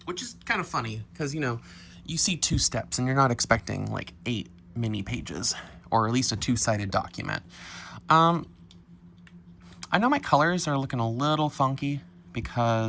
Which is kind of funny, because, you see 2 steps and you're not expecting 8 mini pages, or at least a 2-sided document. I know my colors are looking a little funky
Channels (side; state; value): both; identical; correlation 1.00